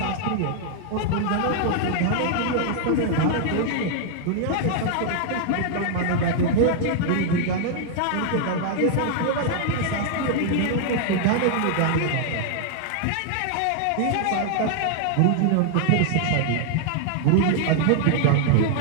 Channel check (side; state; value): both; different; correlation 0.00